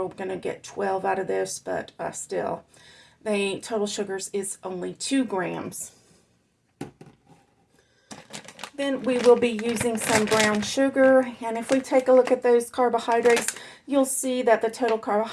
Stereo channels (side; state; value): both; identical; correlation 1.00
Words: going to get 12 out of this, but still. The total sugars is only 2 grams. Then we will be using some brown sugar, and if we take a look at those carbohydrates, you'll see that the total